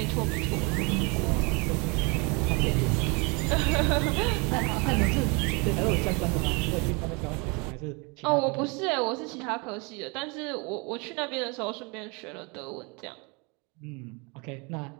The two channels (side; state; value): left; quieter; 30.4 dB